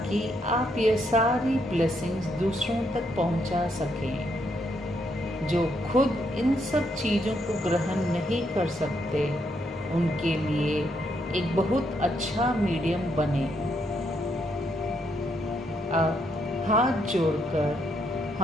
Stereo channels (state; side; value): normal; both; correlation 0.76